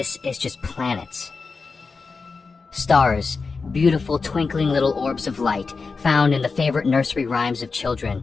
is just planets. Stars, beautiful twinkling little orbs of light found in the favorite nursery rhymes of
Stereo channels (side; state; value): right; quieter; 4.5 dB